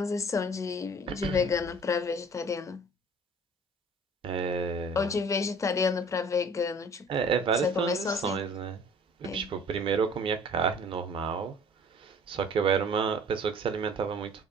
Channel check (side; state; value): both; normal; correlation 0.49